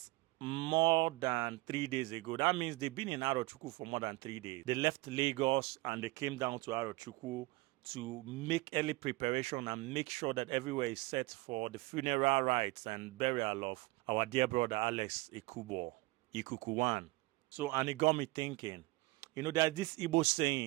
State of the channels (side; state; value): left; quieter; 22.2 dB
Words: more than 3 days ago. That means they've been in Arochukwu for more than 3 days. They left Lagos and they came down to Arochukwu to make early preparation and make sure that everywhere is set for the funeral rites and burial of our dear brother Alex Ikukuwan. So, and it got me thinking, you know, there's this Igbo